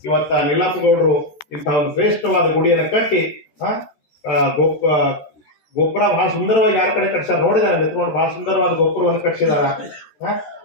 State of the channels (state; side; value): late; right; 13 ms